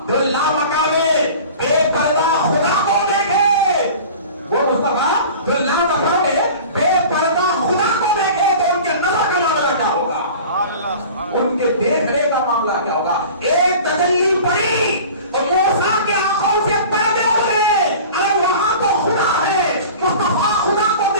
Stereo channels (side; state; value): both; inverted; correlation -0.40